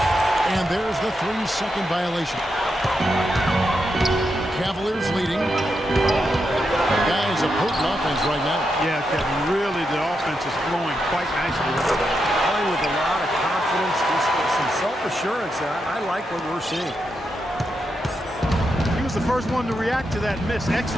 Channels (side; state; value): both; normal; correlation 0.85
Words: And there's the 3-second violation. Cavaliers leading. Guys, a potent offense right now. Yeah, Kevin, really the offense is flowing quite nicely. Playing with a lot of confidence, just some self-assurance. I like what we're seeing. He was the first one to react to that miss.